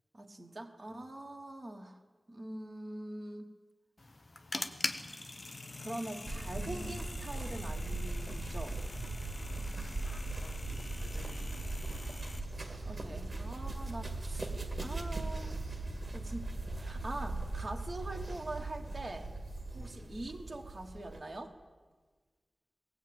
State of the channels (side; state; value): both; normal; correlation 0.93